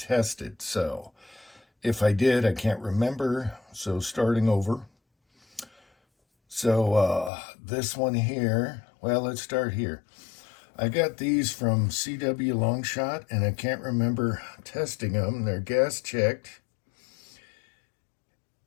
So if I did, I can't remember. So starting over. So this one here, well, let's start here. I got these from CW Longshot and I can't remember testing them. They're gas checked.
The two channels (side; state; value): right; drops out; at 7.3 s